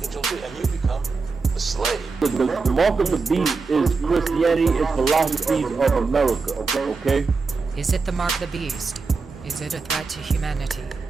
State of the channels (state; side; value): quieter; left; 4.4 dB